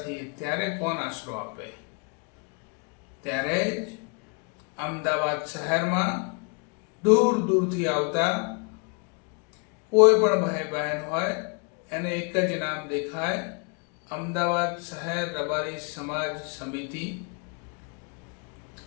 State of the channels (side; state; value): right; quieter; 36.1 dB